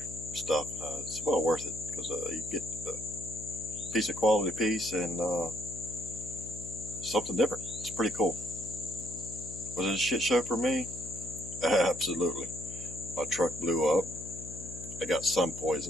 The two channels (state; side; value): noise; left; hum, 12 dB below the sound